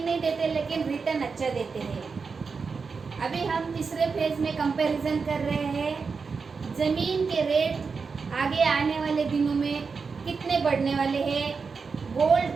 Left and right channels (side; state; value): left; quieter; 5.1 dB